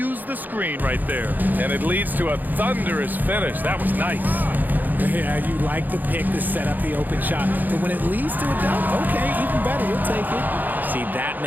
the screen right there. And it leads to a thunderous finish. That was nice. Yeah, you like the pick to set up the open shot. But when it leads to a dunk, okay, even better, you'll take it. See,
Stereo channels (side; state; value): left; late; 0.085 ms